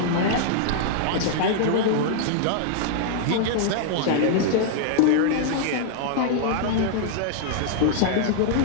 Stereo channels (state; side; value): different; both; correlation -0.01